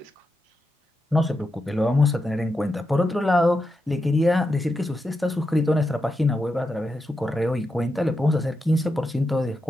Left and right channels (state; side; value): normal; both; correlation 0.87